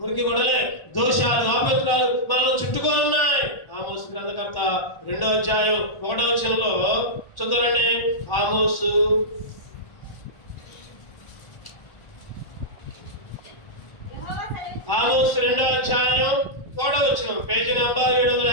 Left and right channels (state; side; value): late; right; 1.1 ms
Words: గొడవలే, దోషాలు, అపవిత్రాలు మనల్ని చుట్టుకొని ఉన్నాయి. ఆమోసు గ్రంథకర్త 2వ అధ్యాయం 1వ వచనంలో చూద్దామండి. ఆమోసు 2వ అధ్యాయం 1వ వచనం, పేజీ నంబర్